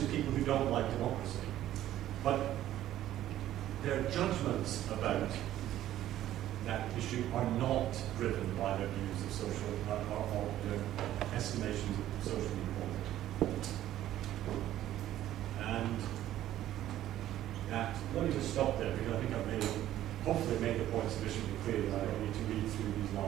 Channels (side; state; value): left; quieter; 13.0 dB